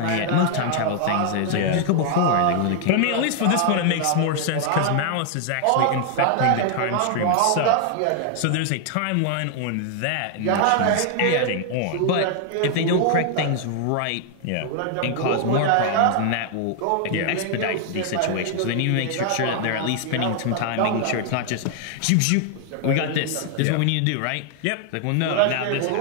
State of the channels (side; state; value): both; different; correlation 0.00